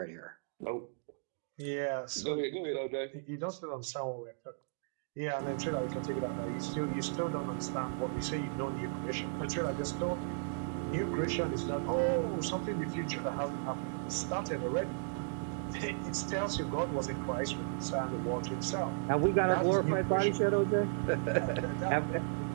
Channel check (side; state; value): left; silent; digital silence